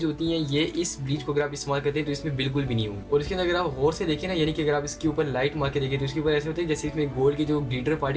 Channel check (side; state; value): both; identical; correlation 1.00